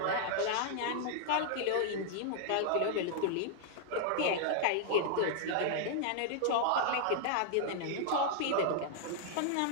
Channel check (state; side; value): different; both; correlation -0.01